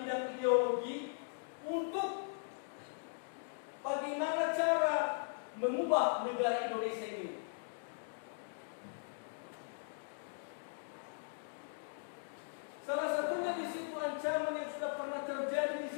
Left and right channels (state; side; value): silent; right; digital silence